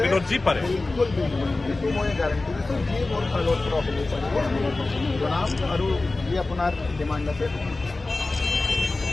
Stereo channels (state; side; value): quieter; right; 3.2 dB